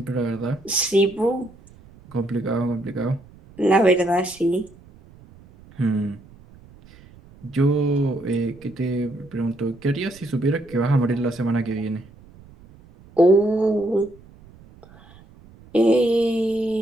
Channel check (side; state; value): right; noise; rumble, 24 dB below the sound